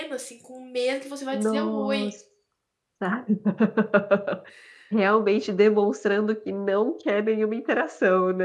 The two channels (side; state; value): both; identical; correlation 1.00